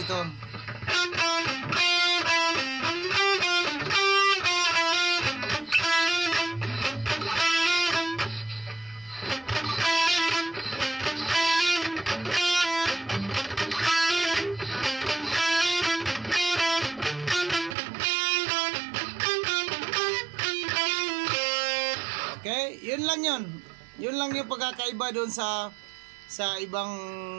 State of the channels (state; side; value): drops out; left; at 17.8 s